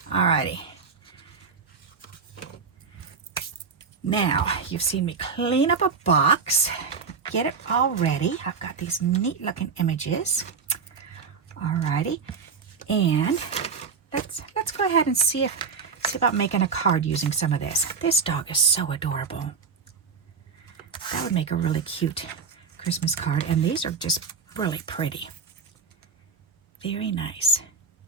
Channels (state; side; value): quieter; left; 5.5 dB